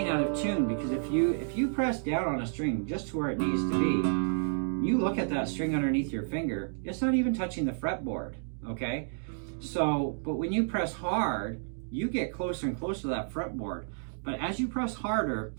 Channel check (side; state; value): left; silent; digital silence